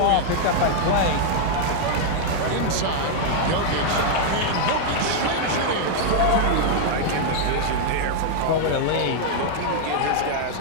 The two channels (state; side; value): different; both; correlation -0.01